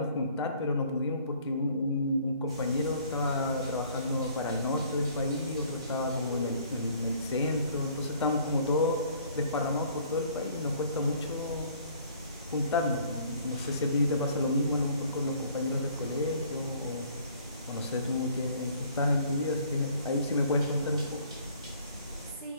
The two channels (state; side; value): inverted; both; correlation -0.57